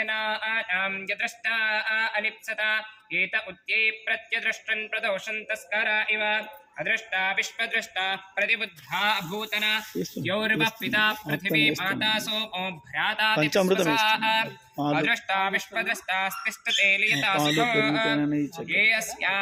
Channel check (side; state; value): both; identical; correlation 1.00